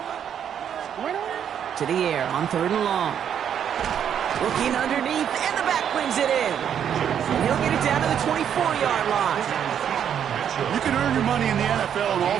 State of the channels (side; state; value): left; quieter; 8.8 dB